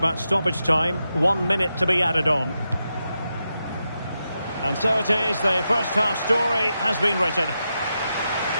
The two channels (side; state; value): both; inverted; correlation -0.87